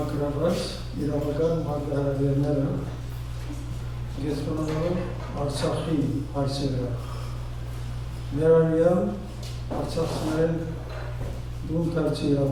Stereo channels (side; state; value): both; identical; correlation 1.00